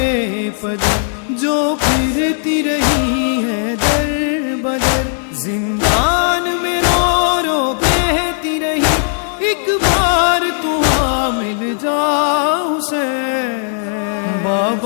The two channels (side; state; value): right; silent; 64 dB below the other